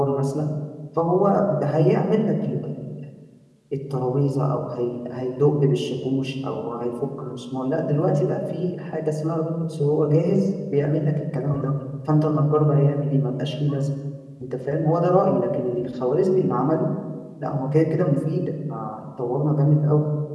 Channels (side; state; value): both; identical; correlation 1.00